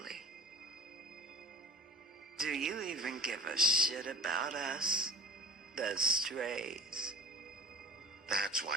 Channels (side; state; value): both; normal; correlation 0.43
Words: Do you even give a shit about us? The strays. That's